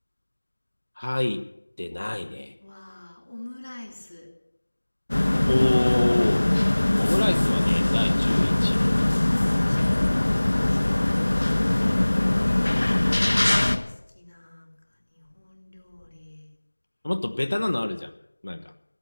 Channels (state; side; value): inverted; both; correlation -1.00